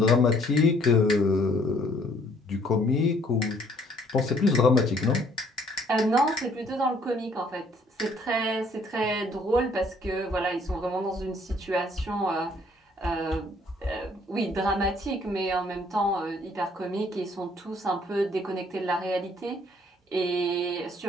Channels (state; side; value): normal; both; correlation 0.62